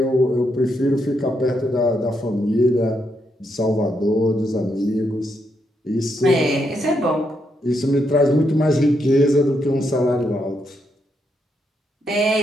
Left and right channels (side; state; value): both; normal; correlation 0.79